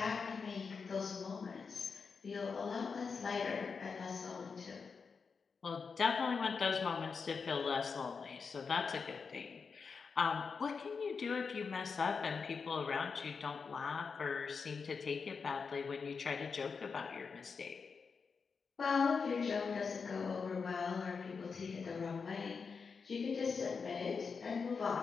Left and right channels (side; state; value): right; quieter; 5.3 dB